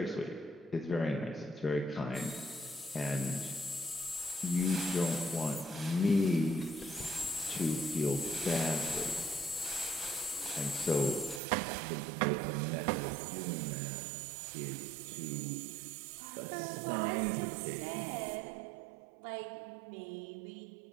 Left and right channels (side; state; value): left; drops out; at 11.4 s